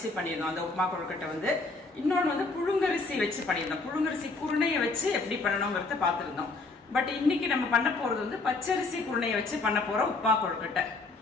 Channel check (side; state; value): right; quieter; 3.6 dB